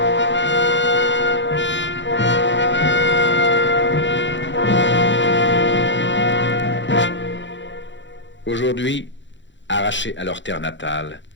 Aujourd'hui, arrachés à leur terre natale,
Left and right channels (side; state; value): right; late; 0.54 ms